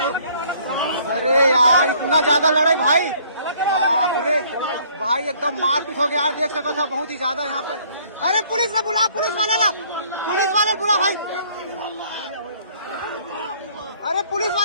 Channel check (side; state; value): both; inverted; correlation -0.60